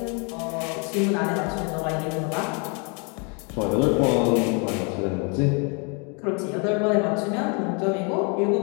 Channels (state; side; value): quieter; right; 35.2 dB